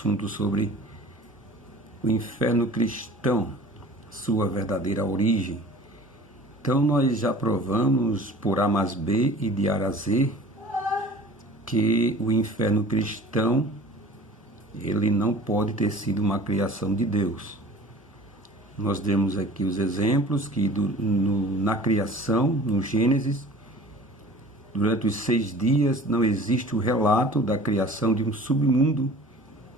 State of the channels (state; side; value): normal; both; correlation 0.44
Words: sobre o inferno cristão, sua verdadeira origem. Então nós já provamos por A mais B e de A a Z que o inferno cristão ele não pode ter sido uma criação de Deus. Nós demos aqui os exemplos que na criação, no Gênesis, durante os 6 dias não existe o relato da criação de um submundo